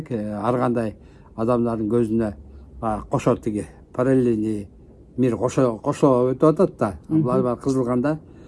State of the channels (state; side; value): identical; both; correlation 1.00